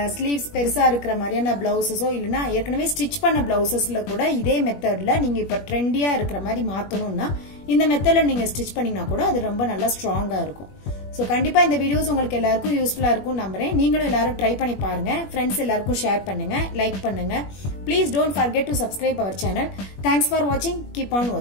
ஸ்லீவ்ஸ் பெருசா இருக்கிற மாதிரியான பிளவுசஸோ இல்லைன்னா ஏற்கனவே ஸ்டிச் பண்ண பிளவுசஸ்ல கூட இதே மெத்தட்ல நீங்க இப்ப ட்ரெண்டியா இருக்கிற மாதிரி மாத்தணும்னா இந்த மெத்தட்ல நீங்க ஸ்டிச் பண்ணீங்கன்னா கூட அது ரொம்ப நல்லா ஸ்ட்ராங்கா இருக்கும். ஸோ கண்டிப்பா இந்த வீடியோஸ் உங்களுக்கு எல்லாருக்கும் யூஸ்ஃபுல்லா இருக்கும் நம்புறேன். நீங்களும் எல்லாரும் ட்ரை பண்ணி பாருங்க, ஃப்ரெண்ட்ஸ் எல்லாருக்கும் ஷேர் பண்ணுங்க, லைக் பண்ணுங்க. Please don't forget to subscribe our channel. Thanks for வாட்சிங், கீப் ஆன்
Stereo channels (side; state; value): right; late; 21 ms